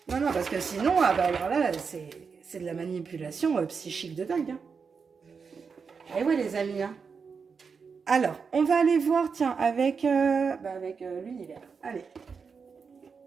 non, non, parce que sinon, alors là, c'est de la manipulation psychique de dingue. Et ouais, les amis. Alors, on va aller voir, tiens, avec l'univers. Allez.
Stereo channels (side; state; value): left; quieter; 5.6 dB